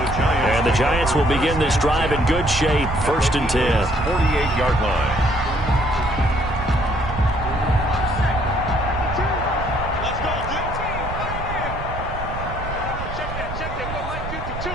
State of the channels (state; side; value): noise; right; rumble, 8 dB below the sound